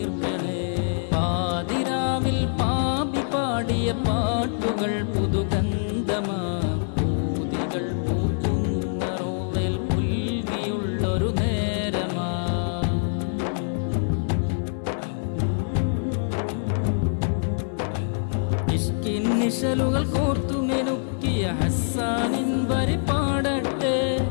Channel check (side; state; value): right; silent; digital silence